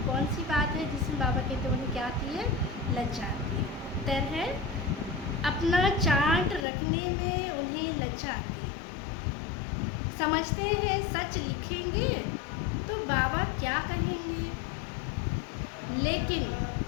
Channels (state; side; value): drops out; right; at 6.7 s